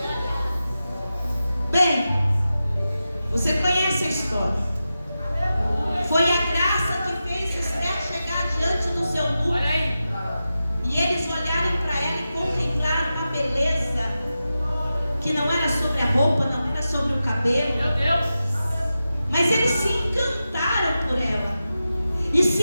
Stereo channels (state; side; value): inverted; both; correlation -0.92